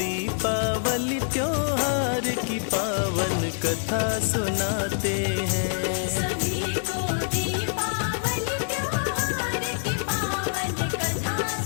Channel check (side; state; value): right; silent; 61 dB below the other